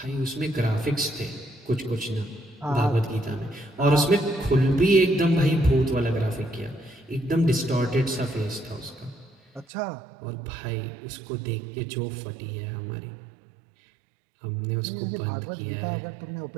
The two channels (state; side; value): drops out; left; at 9.7 s